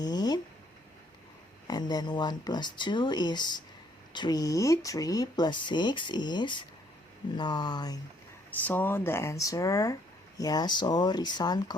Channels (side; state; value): both; normal; correlation 0.66